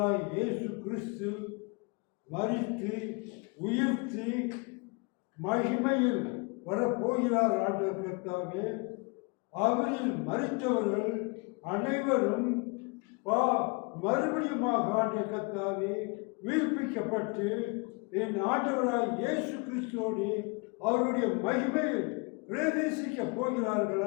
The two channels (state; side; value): quieter; right; 31.0 dB